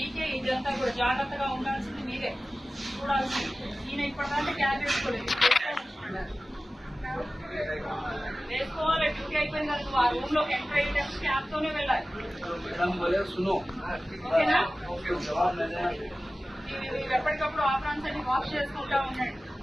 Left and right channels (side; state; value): both; normal; correlation 0.96